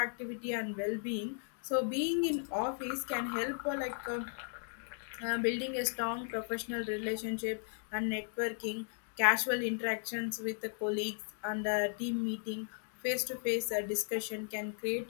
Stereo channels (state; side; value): silent; right; 54 dB below the other